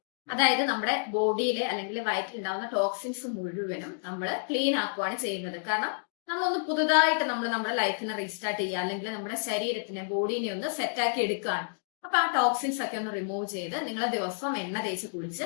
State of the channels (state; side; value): silent; right; digital silence